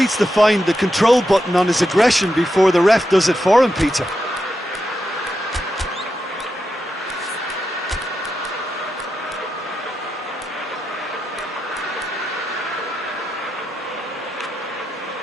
to find the control button on his aggression before the ref does it for him, Peter.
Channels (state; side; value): normal; both; correlation 0.87